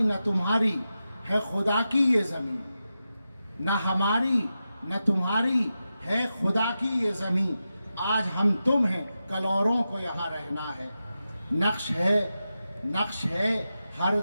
نہ تمہاری ہے خدا کی یہ زمین، نہ ہماری نہ تمہاری ہے خدا کی یہ زمین، آج ہم تم ہیں کل اوروں کو یہاں رہنا ہے، نقش ہے ہر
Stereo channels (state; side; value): inverted; both; correlation -0.91